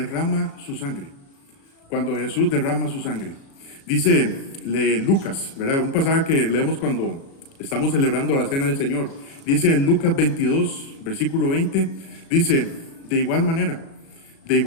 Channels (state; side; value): late; right; 36 ms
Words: su sangre. Cuando Jesús derrama su sangre. Dice Lucas, ¿verdad? Un pasaje que leemos cuando estamos celebrando la cena del Señor. Dice en Lucas 22, versículo 20, dice, de igual manera,